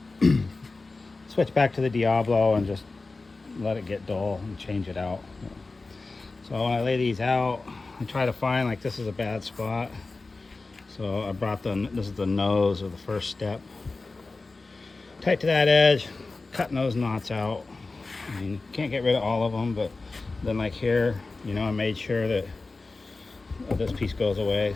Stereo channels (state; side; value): quieter; right; 3.6 dB